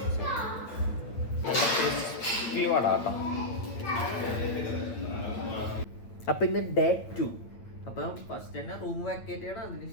നല്ല ക്രിസ്പി വടാട്ടോ. അപ്പം ഇന്ന് ഡേ 2. അപ്പം ഫസ്റ്റ് തന്നെ റൂം വാക്കേറ്റ് ചെയ്യണം.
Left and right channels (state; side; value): late; right; 8.9 ms